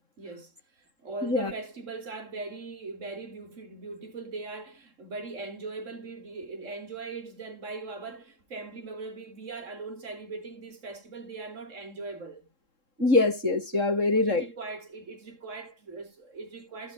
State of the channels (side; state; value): left; late; 3.7 ms